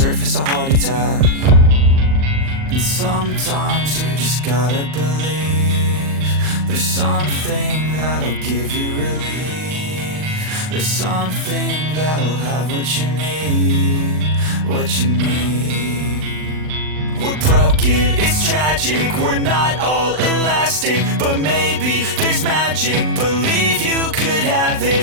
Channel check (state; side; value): late; left; 39 ms